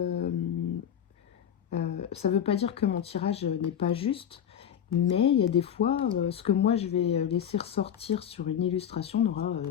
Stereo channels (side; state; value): right; quieter; 9.2 dB